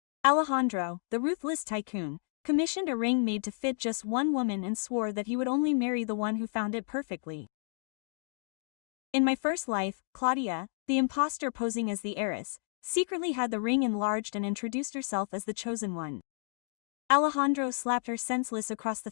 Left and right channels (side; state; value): right; silent; digital silence